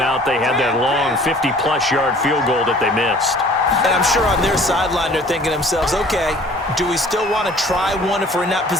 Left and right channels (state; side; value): normal; both; correlation 0.51